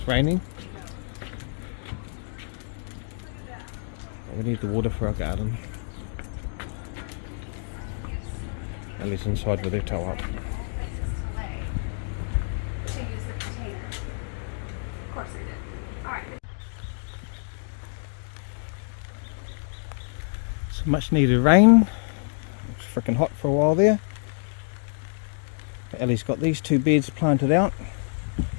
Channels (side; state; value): right; silent; digital silence